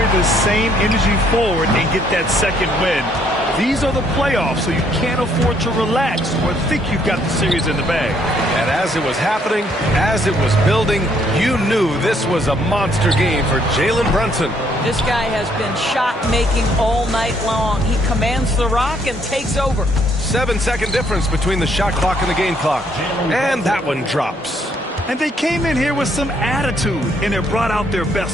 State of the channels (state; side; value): normal; both; correlation 0.68